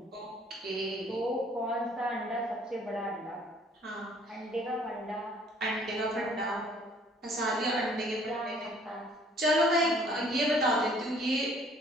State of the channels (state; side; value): normal; both; correlation 0.58